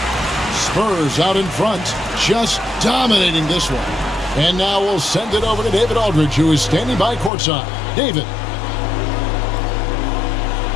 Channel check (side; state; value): right; drops out; at 7.3 s